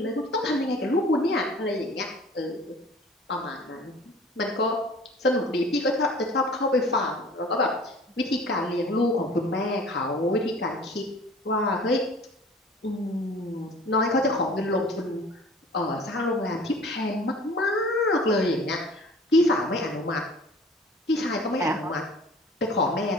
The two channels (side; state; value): both; normal; correlation 0.46